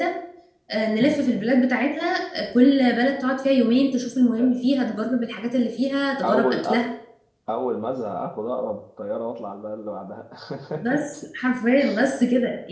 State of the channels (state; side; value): identical; both; correlation 1.00